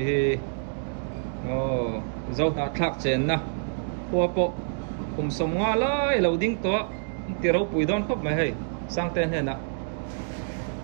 zau ta thak chen na po kum som nga lai lo ding to ti ro pui don khop mai hei Sangten he na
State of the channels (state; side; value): silent; left; digital silence